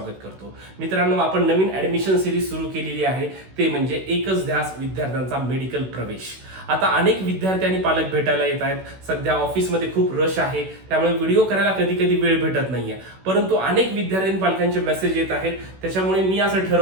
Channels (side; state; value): left; late; 16 ms